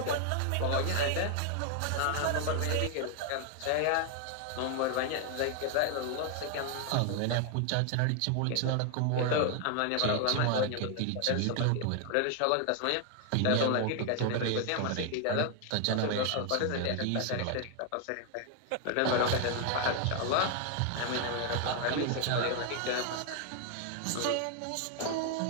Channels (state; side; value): different; both; correlation 0.00